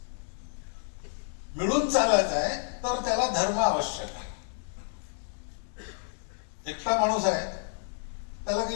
मिळून चालायचं आहे. तर त्याला धर्म आवश्यक आहे. एकटा माणूस आहे त्याला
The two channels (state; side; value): silent; right; digital silence